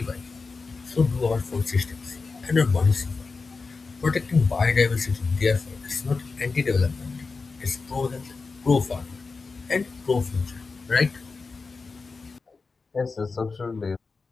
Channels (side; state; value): right; quieter; 4.3 dB